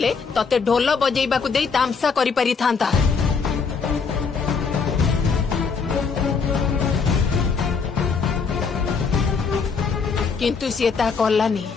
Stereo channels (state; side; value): quieter; right; 5.4 dB